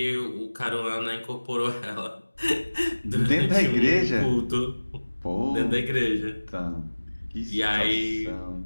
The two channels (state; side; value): inverted; both; correlation -1.00